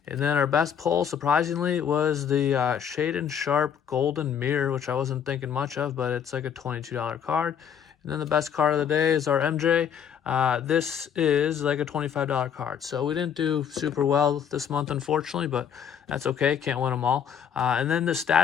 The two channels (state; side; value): quieter; right; 8.1 dB